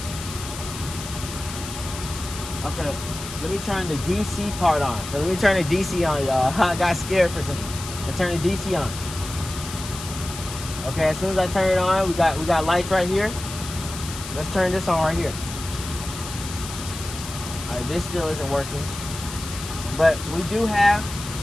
Okay, let me turn the DC part on. So let me turn the DC on, y'all. I got scared for a second. Let's turn the DC on. Okay, as soon as I turn it on, we got lights right here. Let's turn this on right here. Alright, this still isn't working. But we don't have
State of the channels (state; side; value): noise; left; hiss, 10 dB below the sound